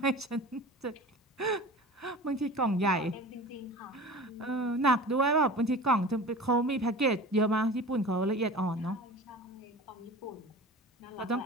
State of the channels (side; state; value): both; normal; correlation 0.37